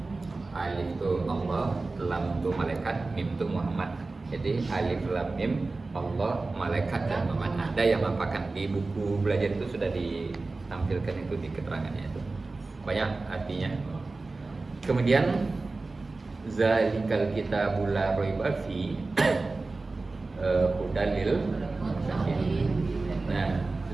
Alif itu Allah, Lam itu malaikat, Mim itu Muhammad. Jadi Alif Lam Mim Allah, malaikat dan Muhammad. Ada yang mempakan di buku belajar itu sudah ditampilkan itu di keterangannya itu. Banyak artinya. Kemudian zalikal kitabul la raiba fi hudalil muttaqin. Nah,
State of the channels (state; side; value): quieter; left; 3.5 dB